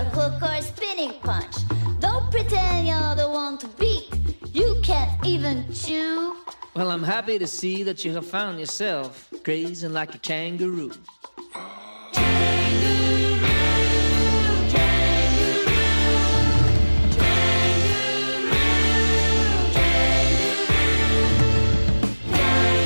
hook, or a spinning punch. Don't pretend you're the one to beat. You can't even chew. Well, I'm happy to see that you have found yourself grazing like a kangaroo.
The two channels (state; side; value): inverted; both; correlation -1.00